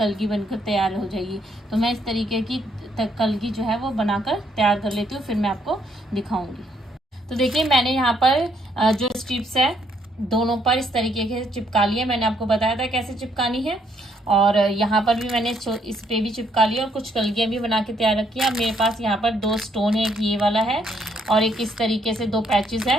बनकर तैयार हो जाएगी। तो मैं इस तरीके की कलगी जो है वो बनाकर तैयार कर लेती हूँ, फिर मैं आपको दिखाऊंगी। तो देखिए मैंने यहाँ पर जो स्ट्रिप्स है दोनों पर इस तरीके से चिपका लिया। मैंने आपको बताया था कैसे चिपकानी है, और यहाँ पर भी मैंने इस पे भी चिपका लिया और कुछ कलगियाँ भी बना के तैयार रखी है। अब मेरे पास यहाँ पर 2 स्टोन है, एक ये वाला है और एक इस तरीके से 2 पैचेस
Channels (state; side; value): normal; both; correlation 0.71